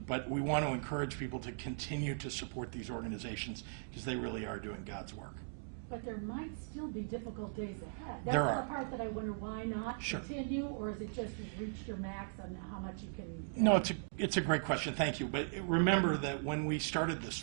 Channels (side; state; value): left; silent; digital silence